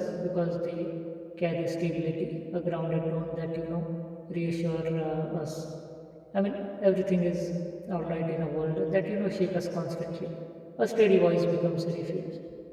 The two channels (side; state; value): both; identical; correlation 1.00